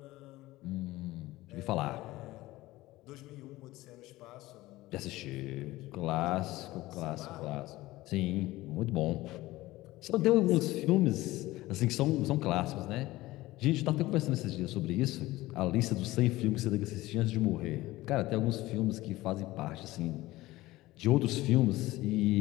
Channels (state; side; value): quieter; right; 18.1 dB